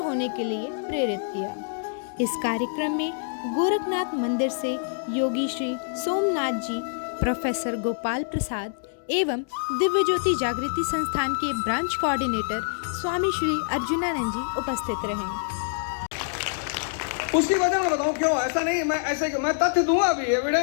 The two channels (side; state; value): right; silent; digital silence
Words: के लिए प्रेरित किया। इस कार्यक्रम में गोरखनाथ मंदिर से योगी श्री सोमनाथ जी, प्रोफेसर गोपाल प्रसाद एवं दिव्य ज्योति जागृति संस्थान के ब्रांच कोऑर्डिनेटर स्वामी श्री अर्जुनानंद जी उपस्थित रहे। उसकी वजह मैं बताऊं क्यों ऐसा नहीं, मैं तथ्य दूंगा अभी,